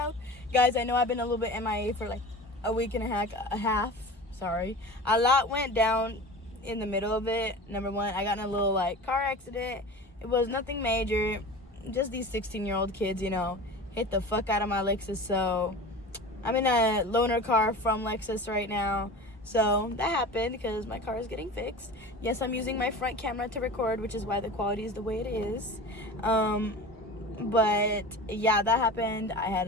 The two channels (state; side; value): normal; both; correlation 0.34